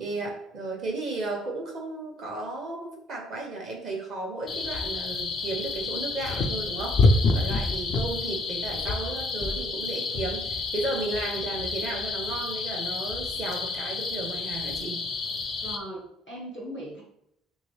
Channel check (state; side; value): normal; both; correlation 0.64